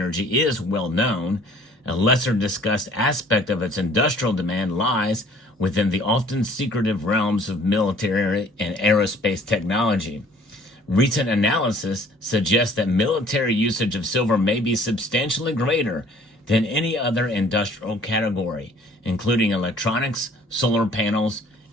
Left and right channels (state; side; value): normal; both; correlation 0.54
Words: is well known. A lesser discussed aspect of its industrial demand lies within the often secretive realms of military and aerospace technology. Recent analysis suggests that military usage of silver may be substantially greater than any other industrial category, including electronics, solar panels,